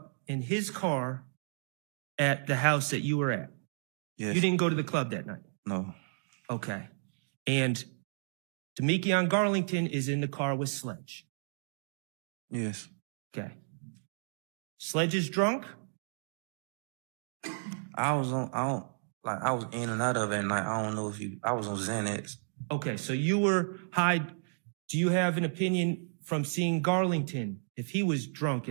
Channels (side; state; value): left; silent; digital silence